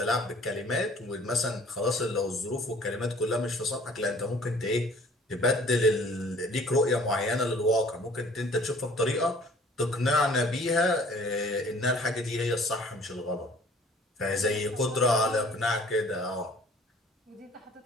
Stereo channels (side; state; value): both; normal; correlation 0.52